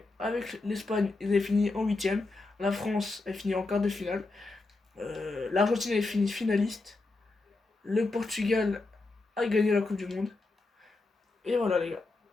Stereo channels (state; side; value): quieter; right; 3.3 dB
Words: avec l'Espagne, ils avaient fini en huitième. La France a fini en quart de finale. L'Argentine avait fini finaliste. Le Portugal a gagné la Coupe du Monde. Et voilà, les gars.